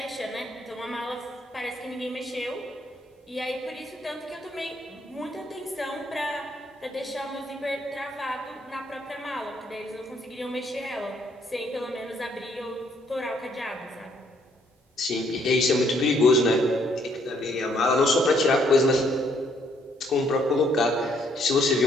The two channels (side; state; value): both; normal; correlation 0.68